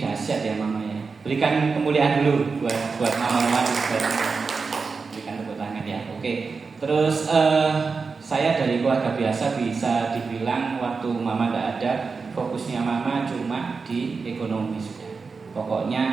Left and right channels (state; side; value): quieter; left; 4.7 dB